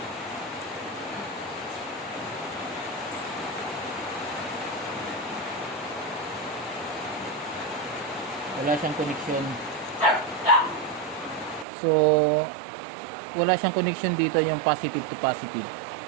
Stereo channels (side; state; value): left; drops out; at 11.7 s